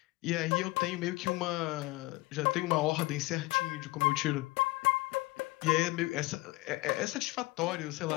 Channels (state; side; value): quieter; right; 21.2 dB